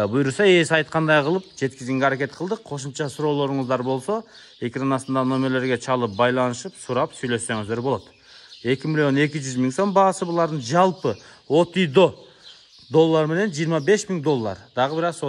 ээси айткандай кылып жеткизгенге аракет кылдык. Кошумча суроолоруңуздар болсо, экран астында номерлерге чалып байланышып, сурап сүйлөшсөңүздөр болот. 2,200,000 сом баасы булардын жалпы от үй до $25,000. Дагы бир аз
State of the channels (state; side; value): identical; both; correlation 1.00